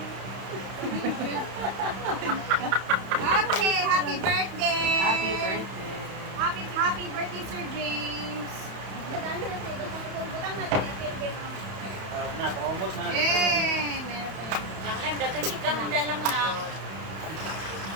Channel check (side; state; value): left; late; 31 ms